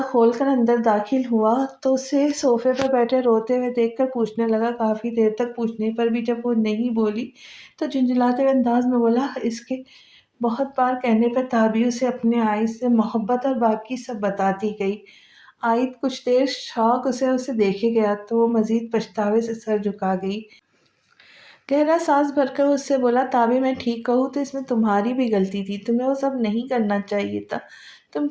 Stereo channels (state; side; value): identical; both; correlation 1.00